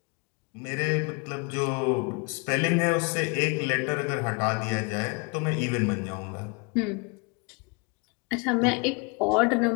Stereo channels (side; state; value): right; quieter; 32.3 dB